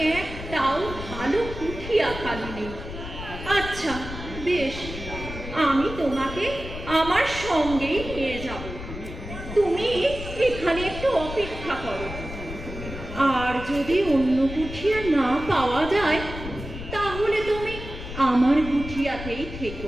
একটাও ভালো কুঠিয়া খালি নেই। আচ্ছা বেশ, আমি তোমাকে আমার সঙ্গেই নিয়ে যাব। তুমি এখানে একটু অপেক্ষা করো, আর যদি অন্য কুঠিয়া না পাওয়া যায় তাহলে তুমি আমার কুঠিয়াতেই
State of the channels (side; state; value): left; noise; rumble, 10 dB below the sound